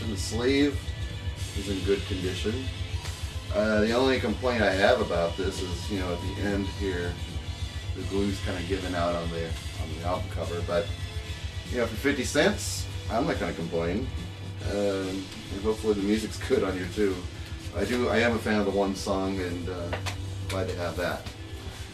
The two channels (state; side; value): identical; both; correlation 1.00